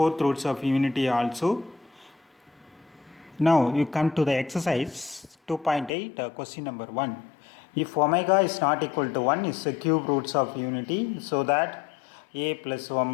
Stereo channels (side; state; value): right; drops out; at 5.9 s